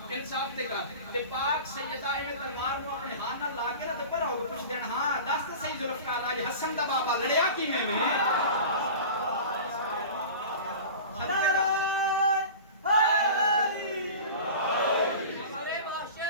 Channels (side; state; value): both; inverted; correlation -0.35